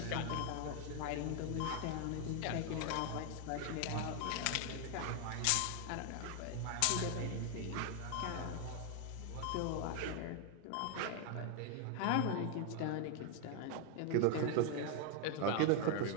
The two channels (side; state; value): both; different; correlation 0.00